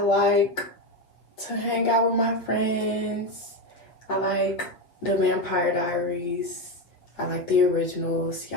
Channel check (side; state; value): right; late; 8.0 ms